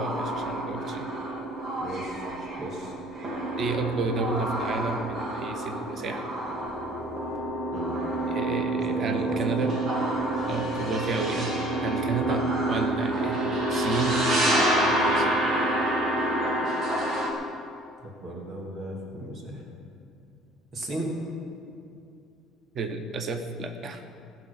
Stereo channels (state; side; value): normal; both; correlation 0.52